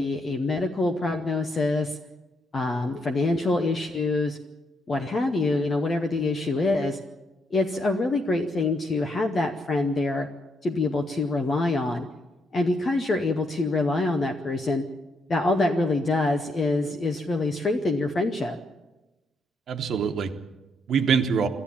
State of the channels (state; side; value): normal; both; correlation 0.76